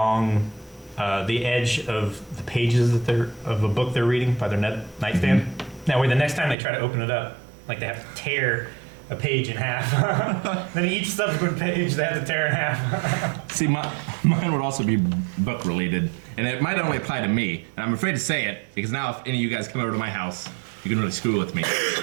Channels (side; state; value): left; drops out; at 6.6 s